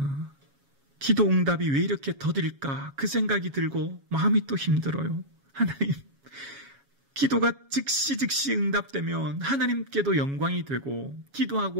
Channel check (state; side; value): late; left; 7.2 ms